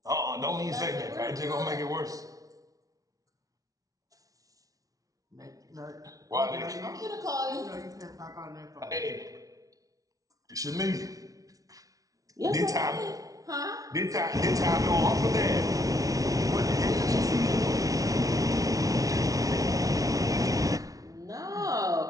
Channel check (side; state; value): left; late; 0.17 ms